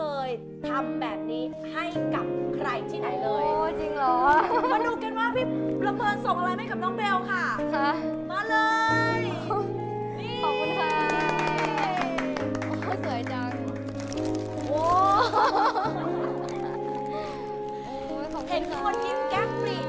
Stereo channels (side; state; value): both; identical; correlation 1.00